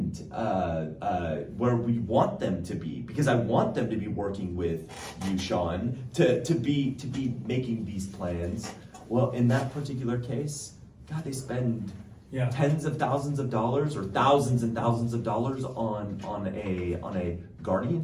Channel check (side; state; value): both; identical; correlation 1.00